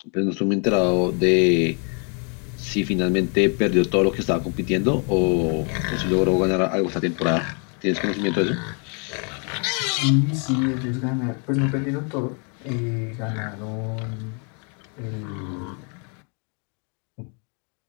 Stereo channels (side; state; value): right; quieter; 38.4 dB